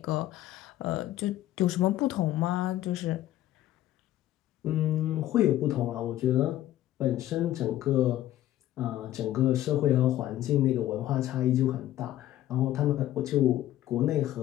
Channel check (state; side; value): quieter; right; 13.7 dB